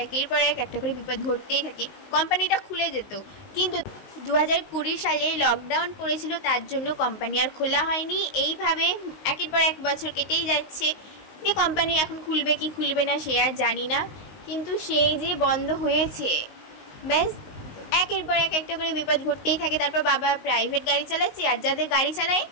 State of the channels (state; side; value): late; right; 19 ms